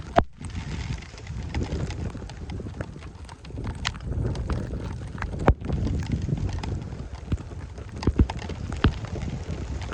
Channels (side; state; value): both; identical; correlation 1.00